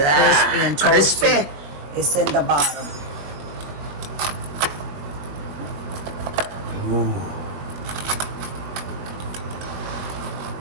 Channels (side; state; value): left; late; 21 ms